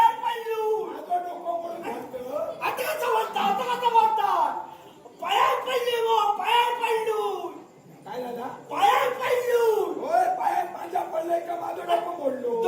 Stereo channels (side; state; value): both; identical; correlation 1.00